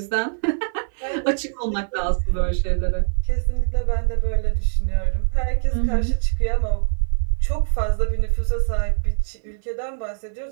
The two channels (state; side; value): silent; left; 58 dB below the other